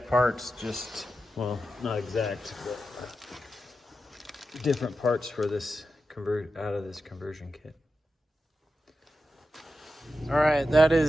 parts, well, not exact, but different parts for this out of this conversion kit. All right, that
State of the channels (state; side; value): normal; both; correlation 0.90